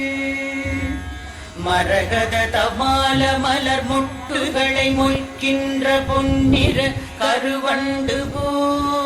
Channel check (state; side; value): identical; both; correlation 1.00